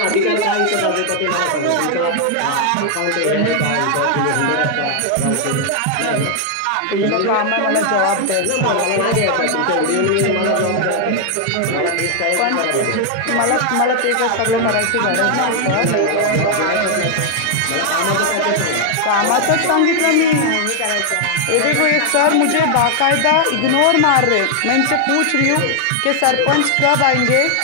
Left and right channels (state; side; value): different; both; correlation 0.00